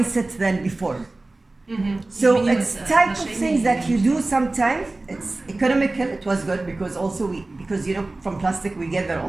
than before. So it's type of things that you do sometimes. It's economical. It was good because also because from plastic we gather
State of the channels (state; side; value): quieter; left; 3.0 dB